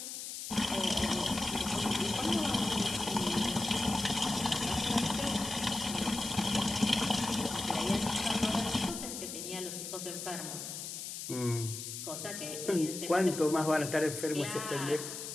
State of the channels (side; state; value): left; noise; hiss, 7 dB below the sound